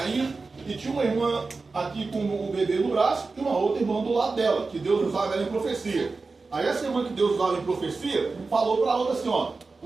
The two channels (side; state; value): left; quieter; 4.0 dB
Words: e tinha uma irmã aqui com o bebê no braço e uma outra irmã do lado dela, que Deus usava ela em profecia. Aí essa irmã que Deus usava em profecia falou para a outra assim, ó,